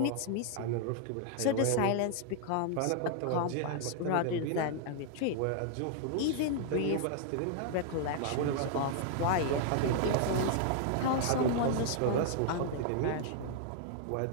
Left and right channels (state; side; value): different; both; correlation 0.00